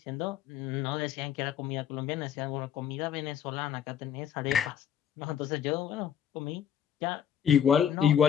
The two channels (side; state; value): right; quieter; 9.0 dB